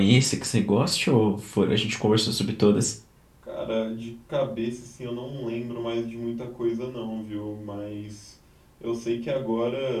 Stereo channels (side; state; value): both; identical; correlation 1.00